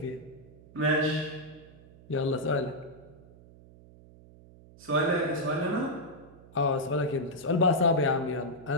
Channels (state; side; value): noise; right; hum, 22 dB below the sound